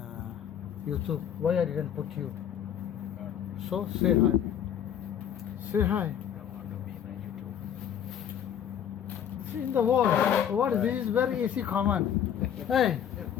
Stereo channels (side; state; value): right; quieter; 9.3 dB